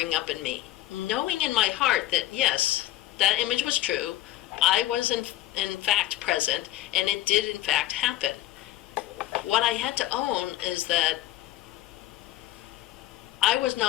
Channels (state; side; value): quieter; right; 14.9 dB